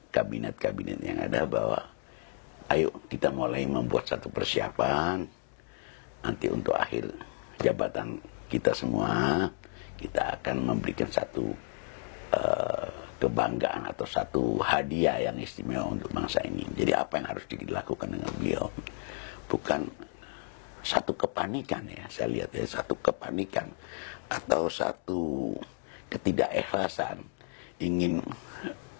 kabinet-kabinet yang ada bahwa ayo kita mulai membuat satu persiapan nanti untuk akhir jabatan kita semua, kita akan memberikan satu kebanggaan atau satu hadiah yang istimewa untuk bangsa ini. Jadi apa yang harus dilakukan dengan beliau bukan satu kepanikan, ya saya lihat ya, satu kepanikan atau satu ketidakikhlasan ingin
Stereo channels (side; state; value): right; silent; 56 dB below the other